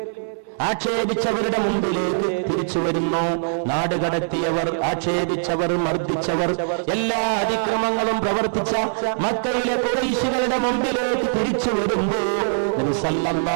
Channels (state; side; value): silent; left; 64 dB below the other